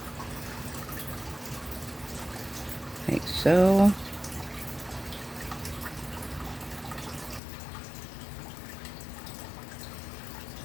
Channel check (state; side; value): drops out; right; at 7.4 s